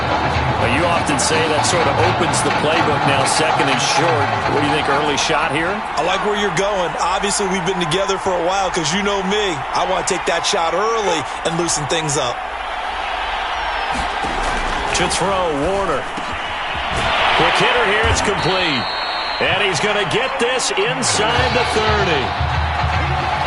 Now, you often say that sort of opens the playbook now, 2nd and short. What do you think, early shot here? I like where you're going. Obviously, we've been together for a while because you know me. I want to take that shot early and loosen things up. To throw, Warner. Quick hitter here, it's complete. And he's going to get this inside the 30.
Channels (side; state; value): both; identical; correlation 1.00